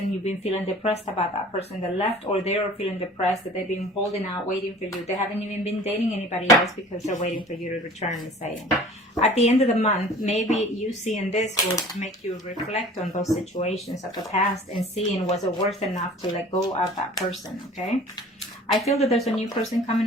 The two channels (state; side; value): normal; both; correlation 0.46